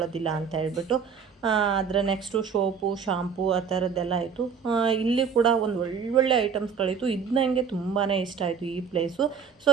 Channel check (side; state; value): left; quieter; 6.4 dB